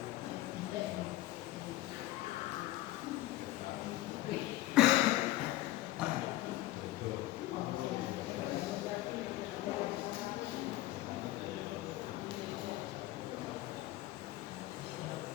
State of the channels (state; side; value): quieter; right; 16.7 dB